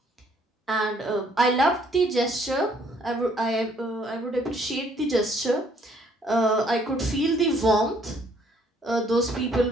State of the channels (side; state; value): both; normal; correlation 0.64